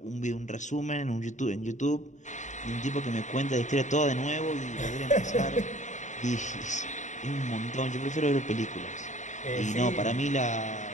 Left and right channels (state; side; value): late; right; 0.35 ms